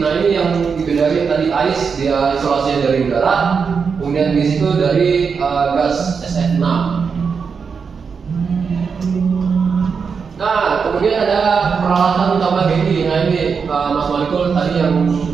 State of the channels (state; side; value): quieter; left; 5.8 dB